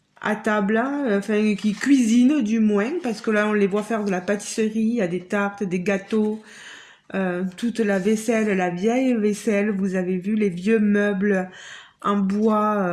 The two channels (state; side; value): identical; both; correlation 1.00